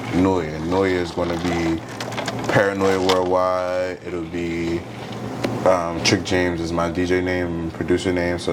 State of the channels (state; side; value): identical; both; correlation 1.00